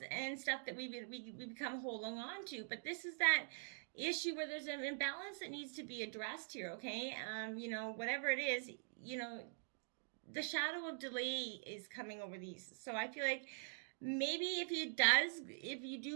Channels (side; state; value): left; silent; digital silence